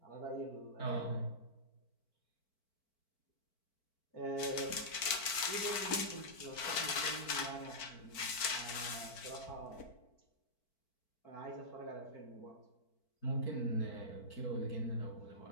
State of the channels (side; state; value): right; late; 4.5 ms